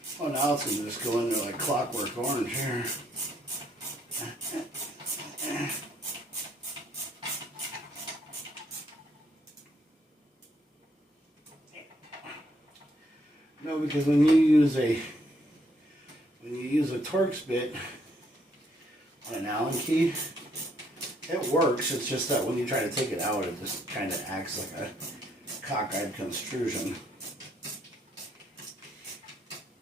Oh, now it's going to just go into like Clockwork Orange here. No, because when you use a Torx bit on an Allen key, it works. It's just that when you try to take it out, it just kind of acts like a cockeyed construction.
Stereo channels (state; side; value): normal; both; correlation 0.71